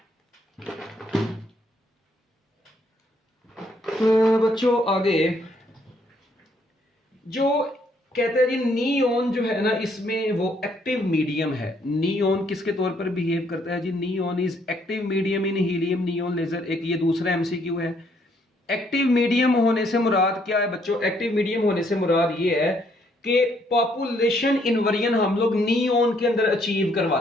तो बच्चों आगे जो कहते हैं जी नियॉन जो है ना, इसमें वो एक्टिव मीडियम है। नियॉन किसके तौर पर बिहेव करता है जी, neon is active medium in helium neon laser. एक ये दूसरा एमसीक्यू है। एक्टिव मीडियम होने से मुराद क्या है बच्चों, एक्टिव मीडियम होने से मुराद ये है कि पॉपुलेशन इन्वर्जन हम लोग नियॉन के अंदर अचीव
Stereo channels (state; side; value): normal; both; correlation 0.69